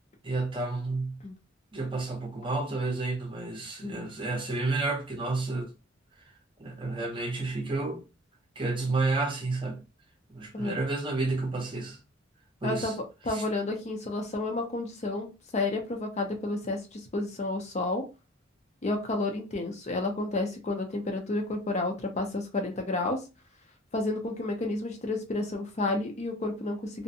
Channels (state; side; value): normal; both; correlation 0.49